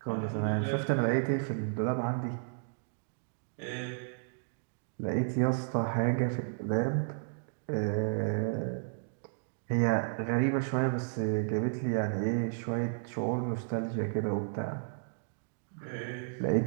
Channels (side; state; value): left; silent; digital silence